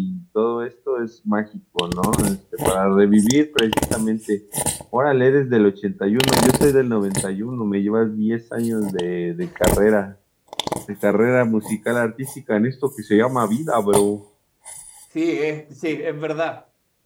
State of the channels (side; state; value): both; identical; correlation 1.00